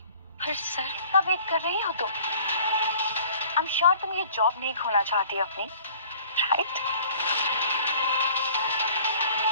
पर सर कब वेट कर रही हो तुम? आई एम श्योर तुम ये जॉब नहीं खोना चाहती अपनी, राइट?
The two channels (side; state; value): both; inverted; correlation -0.50